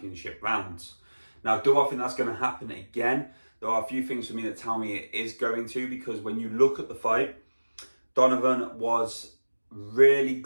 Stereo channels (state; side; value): inverted; both; correlation -1.00